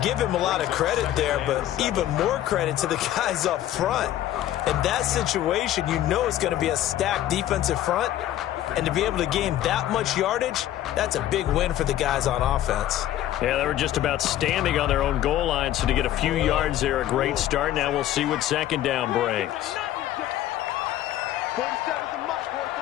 give him a lot of credit there, but even more credit to the guys up front. In that situation, you know it's going to be a stacked defensive front. And to be able to gain that much yardage, that's a big win for the guys on offense. Yeah, they were just about standing on their own goal line, so to get a few yards there, a great start. Now we'll see what 2nd down brings. 47's the mic, boy,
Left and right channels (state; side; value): quieter; right; 12.9 dB